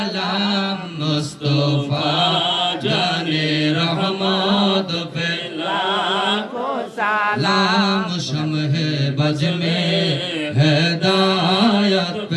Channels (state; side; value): identical; both; correlation 1.00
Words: মুস্তাফা জানে রহমত পে লাখো সালাম লাম শমহে বজ মে হেদায়ত